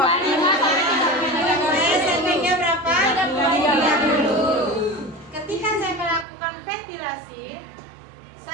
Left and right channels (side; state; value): left; drops out; at 6.2 s